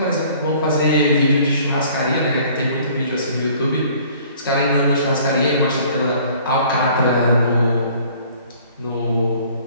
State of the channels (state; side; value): inverted; both; correlation -0.54